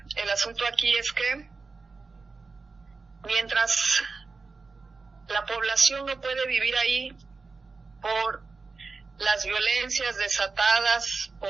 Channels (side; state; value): left; quieter; 4.3 dB